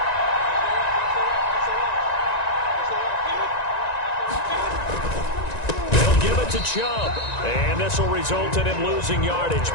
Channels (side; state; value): right; late; 1.9 ms